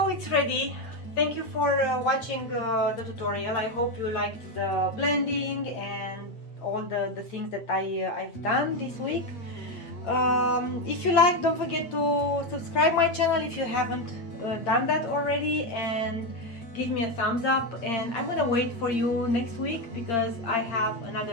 it's ready. Thank you for watching the tutorial. I hope you liked the blending and all the things that I've done this week. If you like, don't forget to subscribe my channel if you haven't done that already, and give me a thumbs up, and I'm gonna wait for you next week because I have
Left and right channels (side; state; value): right; late; 8.8 ms